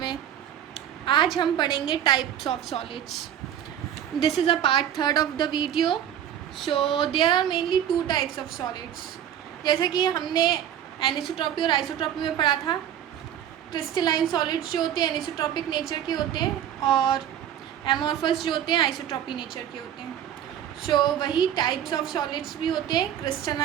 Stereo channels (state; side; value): quieter; left; 10.3 dB